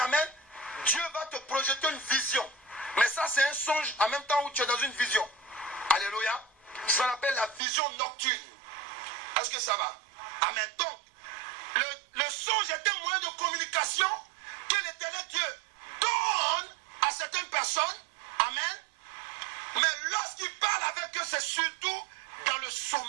amen, Dieu va te projeter une vision. Mais ça, c'est un songe en même temps où tu es dans une vision. Alléluia. Ça s'appelle la vision nocturne. Est-ce que ça va? Amen. Donc, le songe est un moyen de communication que l'Éternel Dieu donne à certaines personnes. Amen. Mais lorsqu'il parle avec eux, c'est surtout dans le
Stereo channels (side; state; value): left; drops out; at 7.6 s